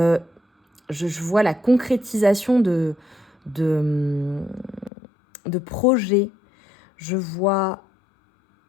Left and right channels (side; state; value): right; drops out; at 4.9 s